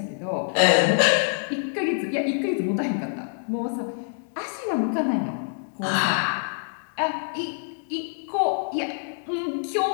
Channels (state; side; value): silent; right; digital silence